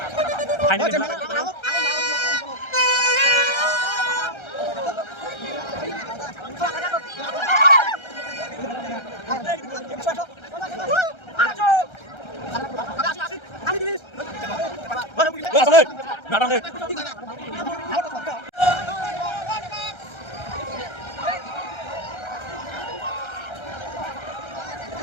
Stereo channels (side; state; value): right; late; 1.3 ms